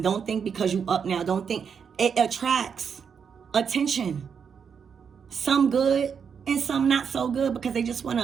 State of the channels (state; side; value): quieter; left; 6.8 dB